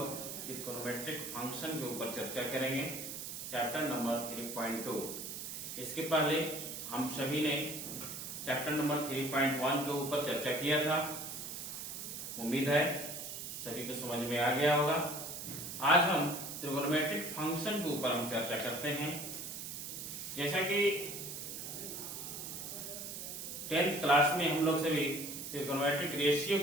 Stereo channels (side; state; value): right; noise; hiss, 7 dB below the sound